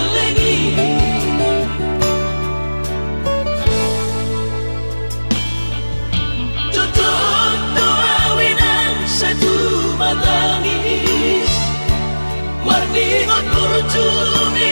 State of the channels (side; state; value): both; inverted; correlation -1.00